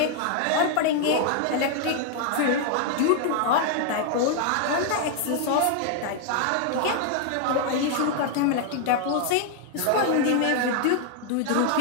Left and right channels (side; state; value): both; different; correlation 0.00